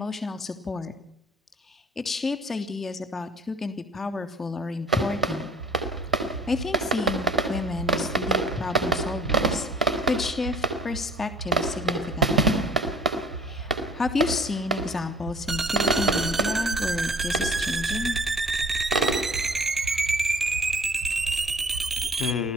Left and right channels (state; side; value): normal; both; correlation 0.50